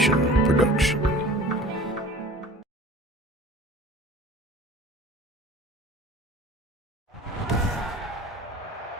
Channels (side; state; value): both; normal; correlation 0.44